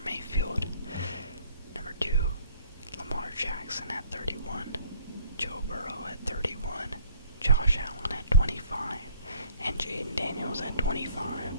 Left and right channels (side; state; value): both; inverted; correlation -0.56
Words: Mayfield. Number 2, Lamar Jackson at 31, Joe Burrow at 31, Josh Allen at 25, and Jaden Daniels at 25.